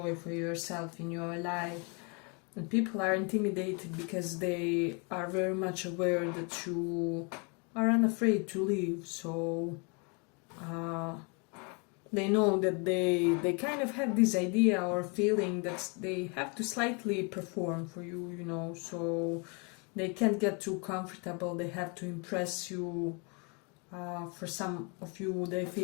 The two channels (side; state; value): right; quieter; 33.9 dB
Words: for yourself in your life. And people are intimidated because they are very much aware that you are unafraid to leave. So they know that they kind of have this idea or feeling that they have to slightly perform for you, you know. So they can't get too comfortable, they have to impress you. For some of you, they